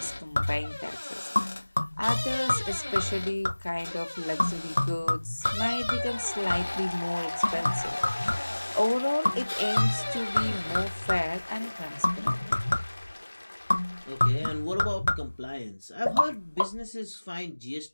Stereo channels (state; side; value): inverted; both; correlation -1.00